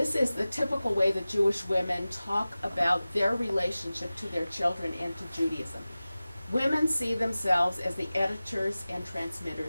is the typical way that Jewish women talk about their relationship to their children and to Judaism. Women see themselves as the editors and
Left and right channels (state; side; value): inverted; both; correlation -0.97